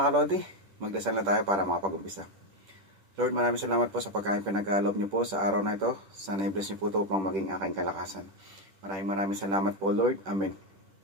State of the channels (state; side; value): late; left; 10 ms